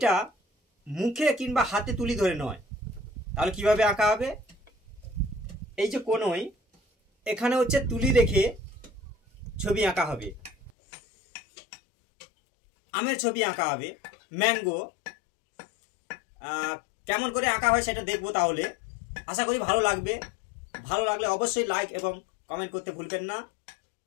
মুখে কিংবা হাতে তুলি ধরে নয়। তাহলে কিভাবে আঁকা হবে? এই যে কোনোই এখানে হচ্ছে তুলি রেখে ছবি আঁকা হবে। আমের ছবি আঁকা হবে, ম্যাঙ্গো। কেমন করে আঁকা হয় সেটা দেখবো। তাহলে আশা করি ভালো লাগবে। ভালো লাগলে অবশ্যই লাইক এবং কমেন্ট করতে ভুলবেন না।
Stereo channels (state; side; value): drops out; right; at 10.7 s